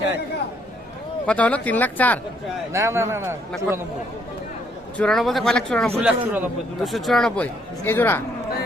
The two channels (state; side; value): normal; both; correlation 0.69